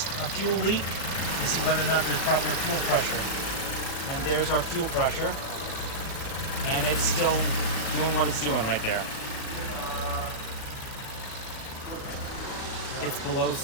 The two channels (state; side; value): late; right; 37 ms